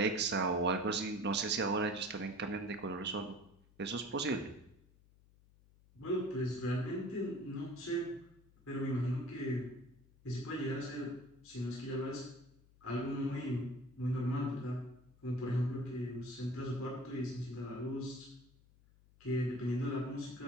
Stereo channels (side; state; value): left; noise; hum, 27 dB below the sound